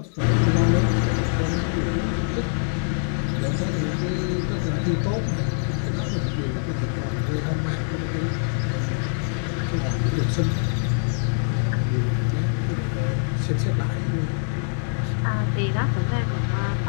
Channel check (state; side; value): silent; right; 63 dB below the other